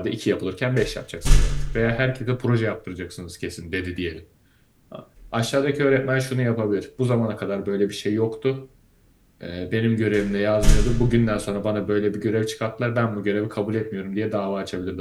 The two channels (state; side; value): identical; both; correlation 1.00